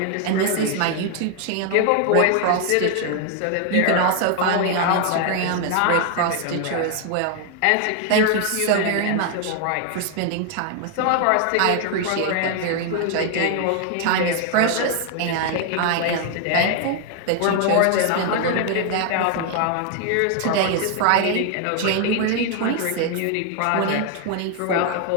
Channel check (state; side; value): different; both; correlation 0.00